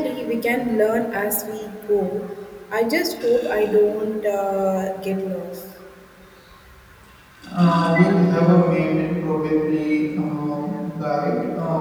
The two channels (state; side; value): identical; both; correlation 1.00